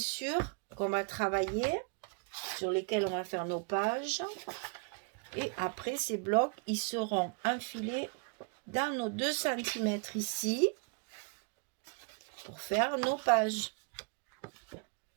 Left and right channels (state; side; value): quieter; left; 35.5 dB